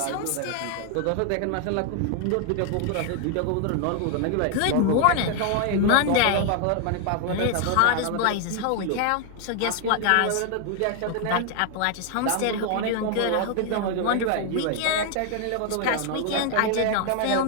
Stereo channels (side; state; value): both; different; correlation 0.00